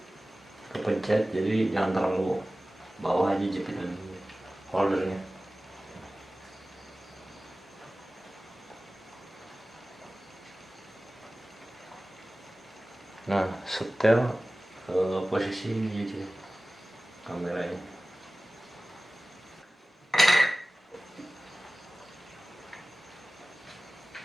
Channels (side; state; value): both; normal; correlation 0.97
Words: kepencet, jadi jangan terlalu bawah aja jepitan holdernya. Nah setel posisi ini aja kameranya.